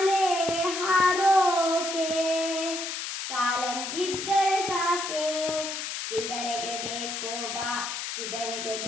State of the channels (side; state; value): left; noise; hiss, 5 dB below the sound